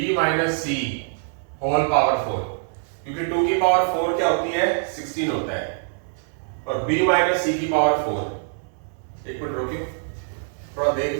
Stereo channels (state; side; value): silent; left; digital silence